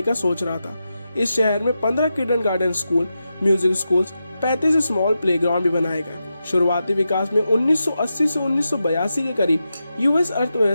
का सोच रहा था। इस शहर में 15 kindergarten school, music schools, 35 small playground भी बनाए गए। शुरुआती विकास में 1980 से 1982 के करीब यूएस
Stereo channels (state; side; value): inverted; both; correlation -0.89